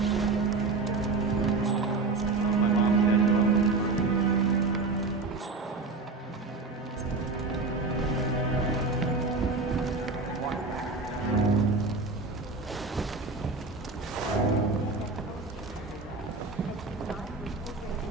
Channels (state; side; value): quieter; left; 3.9 dB